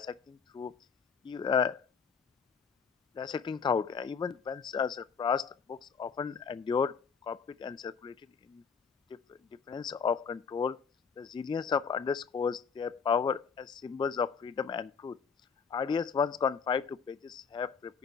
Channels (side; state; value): right; quieter; 6.0 dB